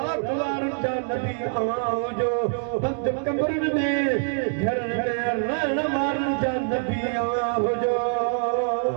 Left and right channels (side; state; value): left; silent; digital silence